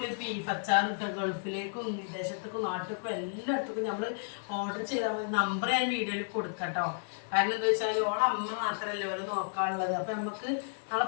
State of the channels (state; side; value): silent; right; digital silence